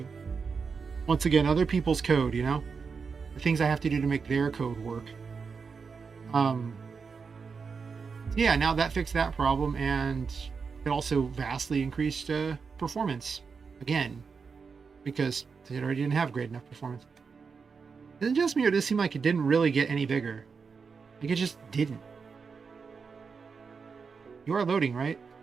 Once again, other people's code, you know, the things I have to do to make their code work. Yeah, now that fixed that problem, and it also vastly increased performance again, because it already didn't have great enough performance. Is it just me, or does it seem like it didn't really get any bigger? Like, it just didn't. You are loading, right?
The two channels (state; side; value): quieter; left; 5.4 dB